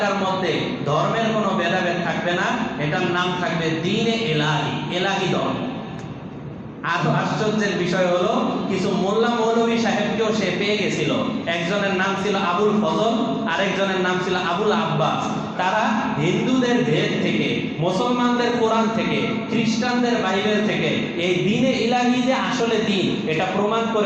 মধ্যে ধর্মের কোনো ভেদাভেদ থাকবে না, এটার নাম থাকবে দ্বীনে ইলাহি, ইলাহি ধর্ম। আর আশ্চর্যের বিষয় হলো, কিছু মোল্লা মৌলভী সাহেবকেও সে পেয়ে গেছিল। একজনের নাম ছিল আবুল ফজল, আরেকজনের নাম ছিল আবুল আব্বাস। তারা হিন্দুদের ভেদ থেকে, মুসলমানদের কোরআন থেকে, খ্রিস্টানদের বাইবেল থেকে এই দ্বীনে ইলাহি যে আসলে দ্বীন, এটা প্রমাণ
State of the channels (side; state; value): both; identical; correlation 1.00